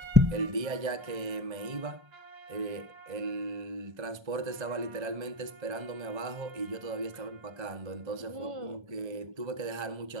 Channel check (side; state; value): left; late; 1.3 ms